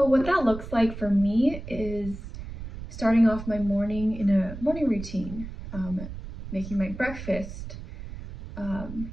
what that looks like for me is starting off my morning in a morning routine, making my breakfast,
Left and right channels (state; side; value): noise; right; rumble, 11 dB below the sound